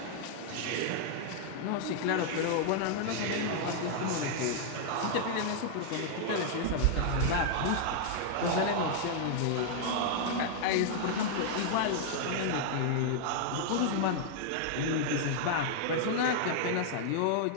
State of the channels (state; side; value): different; both; correlation -0.01